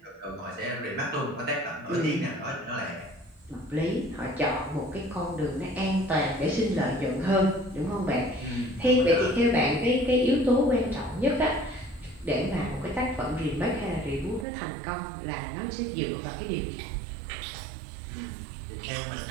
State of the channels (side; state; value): left; drops out; at 14.5 s